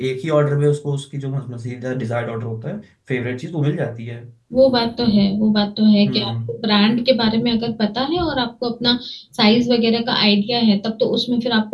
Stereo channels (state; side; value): identical; both; correlation 1.00